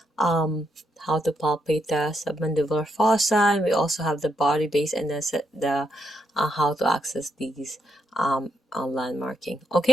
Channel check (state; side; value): normal; both; correlation 0.78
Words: how to palpate the submandibular fossa, and we also have the body base and the how to access these landmarking.